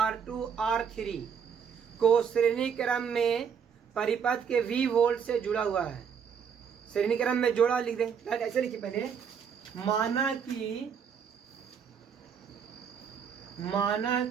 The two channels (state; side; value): quieter; left; 7.1 dB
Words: R3 को श्रेणी क्रम में परिपथ के V वोल्ट से जुड़ा हुआ है। श्रेणी क्रम में जोड़ा लिख दें, ऐसे लिखिए पहले। माना